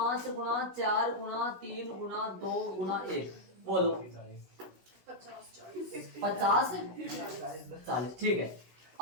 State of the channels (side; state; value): left; late; 16 ms